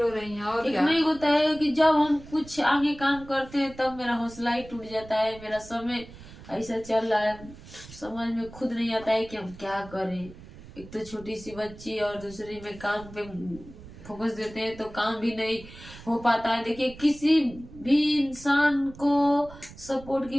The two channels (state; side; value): noise; right; rumble, 18 dB below the sound